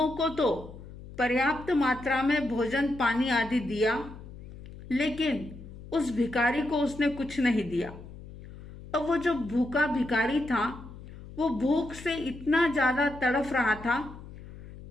को तो पर्याप्त मात्रा में भोजन पानी आदि दिया, लेकिन उस भिखारी को उसने कुछ नहीं दिया। अब वो जो भूखा भिखारी था, वो भूख से इतना ज्यादा तड़फ रहा था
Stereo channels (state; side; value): noise; left; hum, 15 dB below the sound